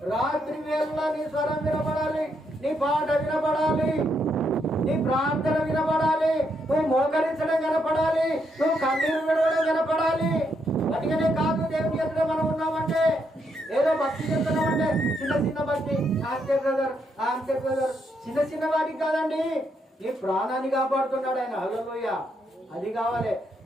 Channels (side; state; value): both; normal; correlation 0.77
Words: రాత్రి వేళ నీ స్వరం వినపడాలి, నీ పాట వినపడాలి, నీ ప్రార్థన వినపడాలి, నువ్వు మోకరించడం కనపడాలి, నువ్వు కన్నీరు విడవడం కనపడాలి. అందుకనే కాదు దేవుని ఎదుట మనం ఉన్నామంటే, ఏదో భక్తి చెప్తున్నామంటే చిన్న భక్తి, అంతే బ్రదర్, చిన్న వాటికి కాదండి. నీ ప్రాణాన్ని కాపాడుతున్నాడు ఆయన. హల్లెలూయా. అది కావాలి.